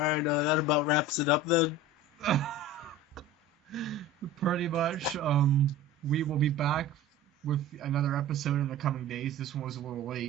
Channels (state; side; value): normal; both; correlation 0.35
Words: right. That about wraps it up then. Pretty much. We will be back with another episode in the coming days. This one was a little